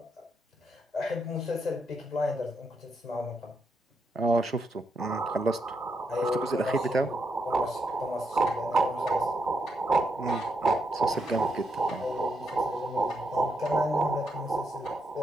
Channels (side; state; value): both; normal; correlation 0.81